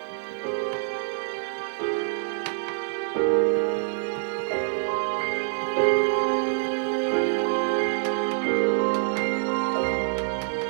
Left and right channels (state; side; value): silent; left; digital silence